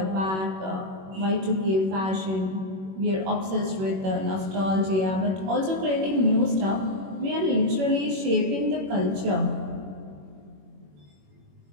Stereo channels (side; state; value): left; late; 21 ms